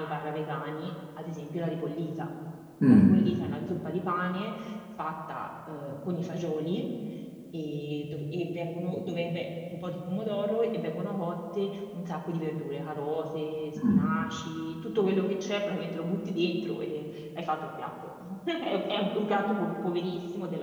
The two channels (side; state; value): both; identical; correlation 1.00